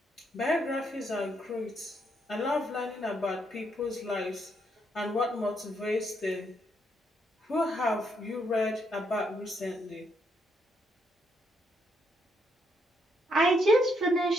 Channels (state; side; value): normal; both; correlation 0.75